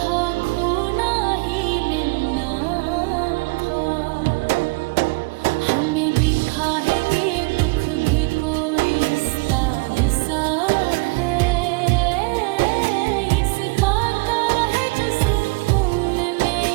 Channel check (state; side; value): quieter; left; 27.5 dB